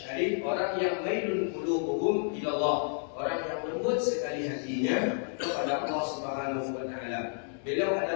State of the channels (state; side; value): silent; right; 57 dB below the other